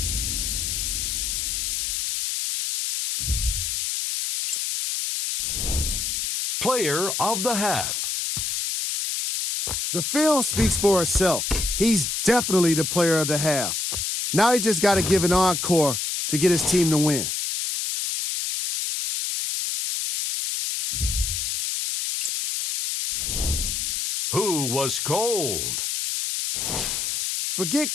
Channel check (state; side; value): noise; left; hiss, 1 dB below the sound